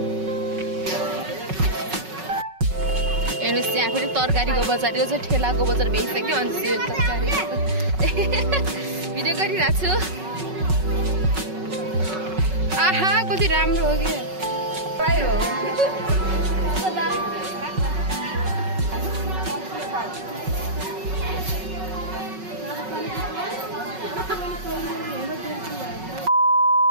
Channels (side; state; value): left; late; 5.4 ms